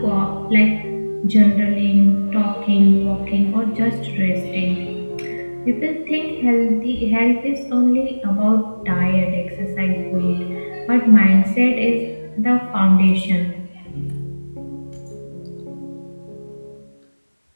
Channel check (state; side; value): inverted; both; correlation -1.00